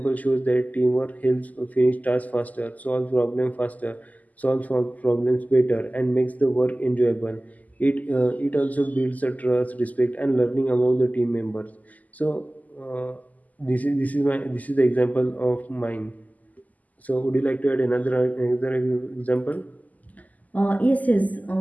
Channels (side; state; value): right; late; 0.078 ms